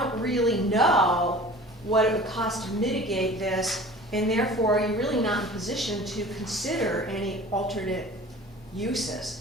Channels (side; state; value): both; normal; correlation 0.42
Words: really know what it would cost to mitigate this, and therefore you're really not in position to consider any alternate